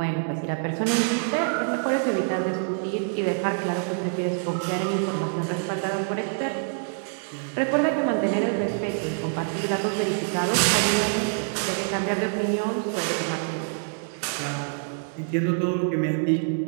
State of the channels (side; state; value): left; silent; 61 dB below the other